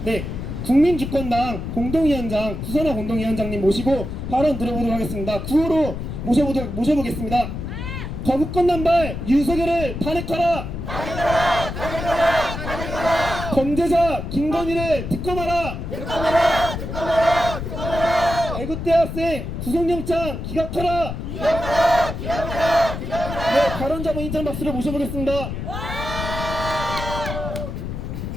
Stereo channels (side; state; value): left; noise; rumble, 6 dB below the sound